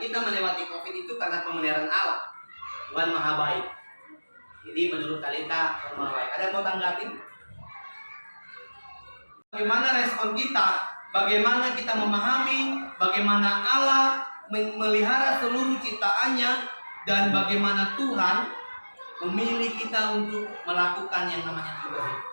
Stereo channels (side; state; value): both; inverted; correlation -1.00